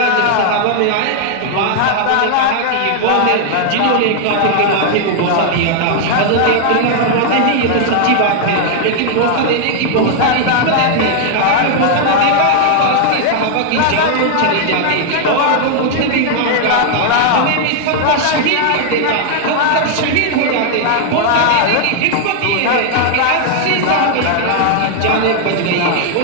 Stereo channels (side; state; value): both; different; correlation 0.00